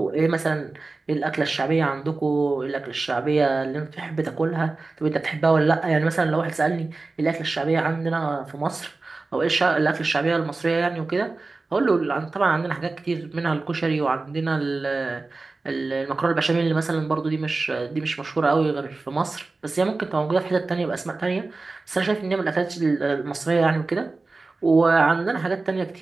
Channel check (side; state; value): left; quieter; 3.6 dB